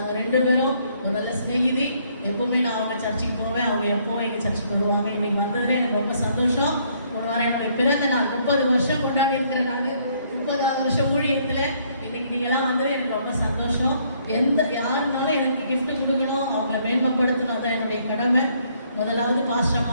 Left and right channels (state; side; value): inverted; both; correlation -0.67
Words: 2 பேரும் ஒரு நல்ல ஸ்நேகிதி. எப்பவுமே நான் அவங்க சர்ச்சுக்கு போவேன், அவங்க எப்பவும் எங்கள் சர்ச்சுக்கு வருவாங்க. இன்னைக்கு வந்ததுல எனக்கு ரொம்ப சந்தோஷம். ஒரு வாரம் என்னுடைய பிறந்த நான் 30 வருஷம் கொண்டாடி இருக்கிறேன். நான் 30வது வருஷம் ஊழியத்தில் இன்னைக்கு நீங்களாம் வந்தது எனக்கு ரொம்ப சந்தோஷம். யாருனாலும் எனக்கு கிஃப்ட் கொடுக்கணும், அவங்கள மேன்மைப்படுத்தணும், அதான் என்னுடைய கடமை. முதலாவது